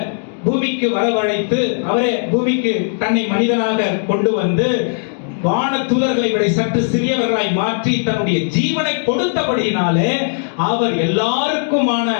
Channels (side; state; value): right; silent; digital silence